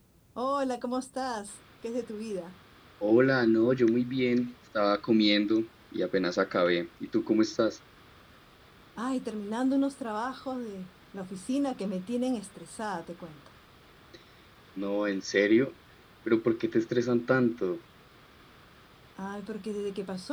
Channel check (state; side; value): identical; both; correlation 1.00